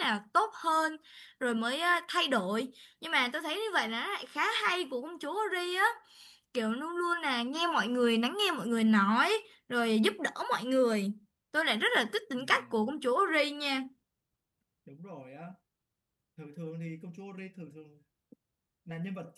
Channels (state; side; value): identical; both; correlation 1.00